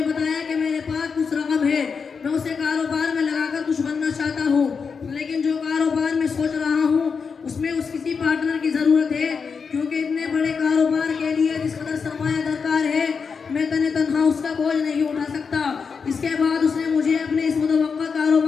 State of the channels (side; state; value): right; quieter; 5.6 dB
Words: बताया कि मेरे पास कुछ रकम है, मैं उसे कारोबार में लगाकर कुछ बनना चाहता हूँ, लेकिन जो कारोबार में सोच रहा हूँ उसमें उस किसी पार्टनर की ज़रूरत है, क्योंकि इतने बड़े कारोबार के लिए जिस कदर सरमाया दरकार है मैं तन्हा उसका बोझ नहीं उठा सकता। इसके बाद उसने मुझे अपने इस मुतवक्का